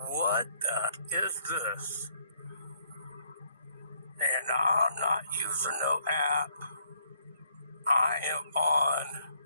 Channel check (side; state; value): both; inverted; correlation -0.68